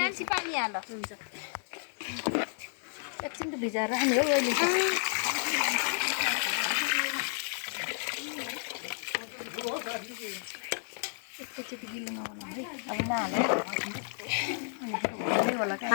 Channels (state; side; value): silent; right; digital silence